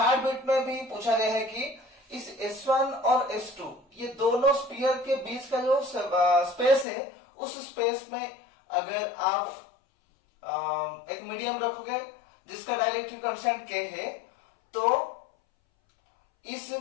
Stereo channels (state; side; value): drops out; right; at 6.9 s